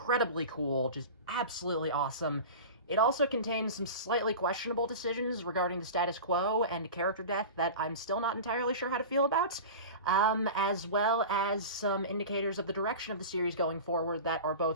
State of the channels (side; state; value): both; inverted; correlation -0.32